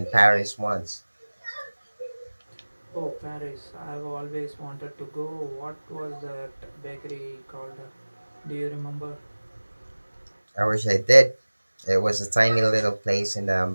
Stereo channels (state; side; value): inverted; both; correlation -1.00